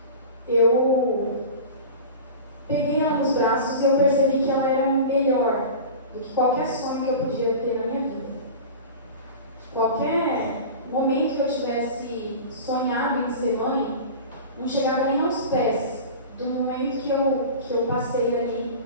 eu peguei ela nos braços e eu percebi que ela era melhor do que qualquer sonho que eu podia ter na minha vida. Qualquer momento que eu tivesse sonhado em ser mãe, não chegava nem aos pés do momento que eu passei ali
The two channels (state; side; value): inverted; both; correlation -0.33